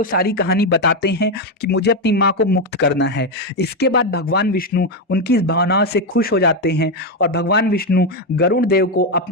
सारी कहानी बताते हैं कि मुझे अपनी माँ को मुक्त करना है। इसके बाद भगवान विष्णु उनकी इस भावनाओं से खुश हो जाते हैं और भगवान विष्णु गरुड़ देव को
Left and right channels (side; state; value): both; normal; correlation 0.07